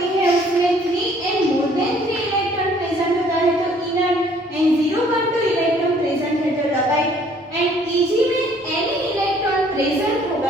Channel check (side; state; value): both; normal; correlation 0.59